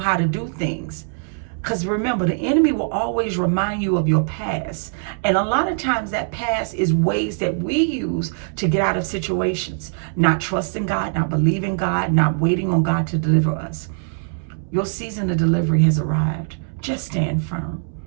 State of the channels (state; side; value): silent; left; 65 dB below the other